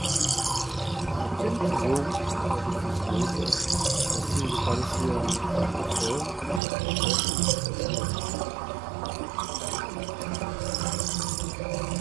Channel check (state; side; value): drops out; left; at 6.6 s